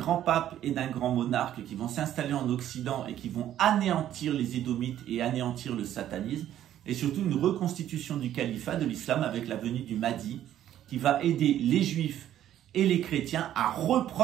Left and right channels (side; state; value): left; quieter; 11.6 dB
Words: pape et d'un grand monarque qui vont s'installer en Occident et qui vont anéantir les Édomites et anéantir le satanisme. Et surtout, une reconstitution du califat de l'islam avec la venue du Mahdi qui va aider les Juifs et les chrétiens à